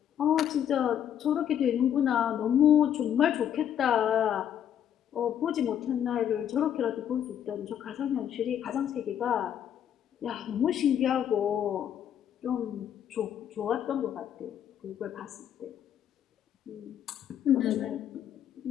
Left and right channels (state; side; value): quieter; right; 9.7 dB